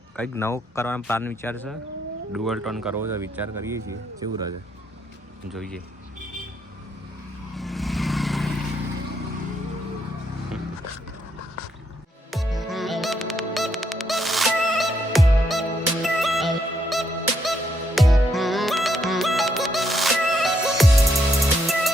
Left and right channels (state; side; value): normal; both; correlation 0.75